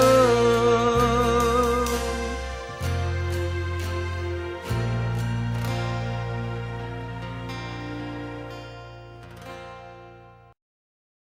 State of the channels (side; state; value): both; identical; correlation 1.00